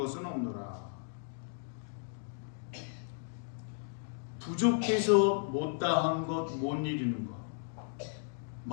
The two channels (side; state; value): right; silent; digital silence